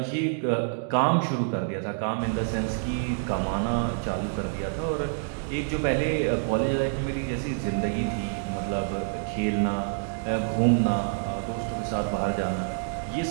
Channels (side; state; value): left; silent; digital silence